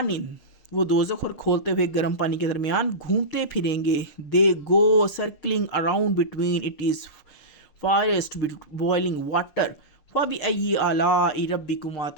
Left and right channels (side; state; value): right; late; 6.5 ms